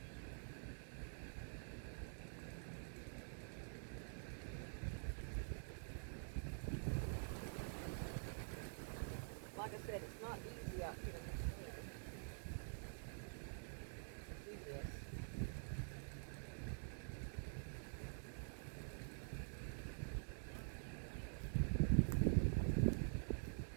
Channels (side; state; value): left; silent; digital silence